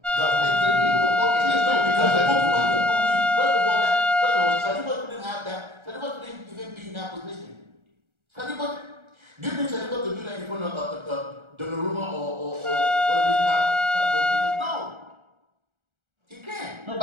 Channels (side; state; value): left; late; 1.3 ms